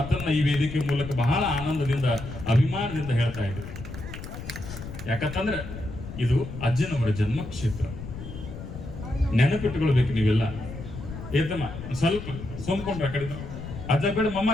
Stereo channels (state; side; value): noise; left; rumble, 10 dB below the sound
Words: ಈ ವೇದಿಕೆ ಮೂಲಕ ಬಹಳ ಆನಂದದಿಂದ, ಅಭಿಮಾನದಿಂದ ಹೇಳ್ತಾ ಇದ್ರು. ಯಾಕಂತಂದ್ರೆ ಇದು ಅಜ್ಜನವರ ಜನ್ಮ ಕ್ಷೇತ್ರ. ನೆನಪಿಟ್ಟುಕೊಳ್ಬೇಕು ನೀವೆಲ್ಲ. ಏತಮ್ಮ ಸ್ವಲ್ಪ ಸೋಮ್ಕೊಂಡ್ರ ಕಡಿದ ಅಜ್ಜ ಬೇಡ